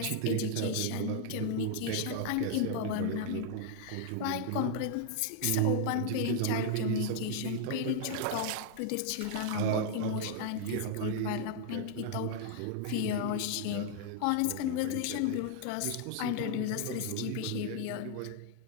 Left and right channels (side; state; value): both; different; correlation 0.00